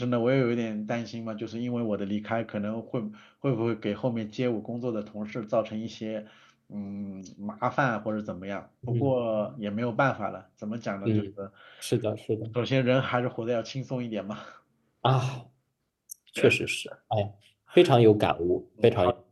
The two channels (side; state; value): both; identical; correlation 1.00